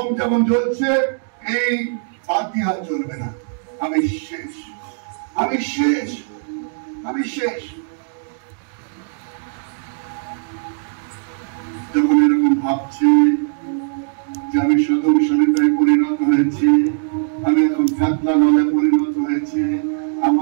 যেমন জ্বলছে, এই বাতি আর জ্বলবে না। আমি শেষ, আমি শেষ, আমি শেষ। যখন এরকম ভাবছি যে আমি সদম সলিতায় পরিণত হয়েছি, আমি এখন কাতলা নলে পরিণত হয়েছি,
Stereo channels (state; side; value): silent; left; digital silence